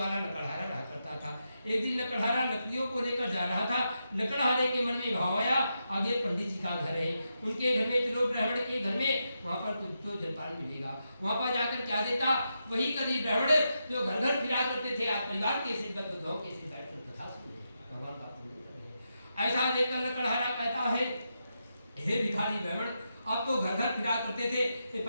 लकड़हारा रहा करता था। एक दिन लकड़हारा लकड़ियों को लेकर जा रहा था। लकड़हारे के मन में भाव आया, आगे पंडित जी का घर है, उनके घर में चलो ब्राह्मण के घर में, वहाँ पर कुछ तो जलपान मिलेगा। वहाँ पर जाकर क्या देता, वही कभी ब्राह्मण जो घर घर फिरा करते थे, आज परिवार के से गाँव के से बैठकर कथा सुने, भगवान का पूजन करे। ऐसा देखकर लकड़हारा कहता है, हे भिखारी ब्राह्मण, आप तो घर घर फिरा करते थे, ये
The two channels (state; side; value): inverted; both; correlation -0.86